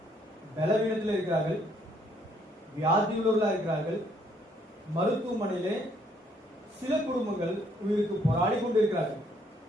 பலவீனத்தில் இருக்கிறார்கள், வியாதியுள்ளவர்களாக இருக்கிறார்கள். மருத்துவமனையிலே சில குடும்பங்கள் உயிருக்கு போராடி கொண்டிருக்கிறார்கள்.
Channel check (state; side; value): normal; both; correlation 0.67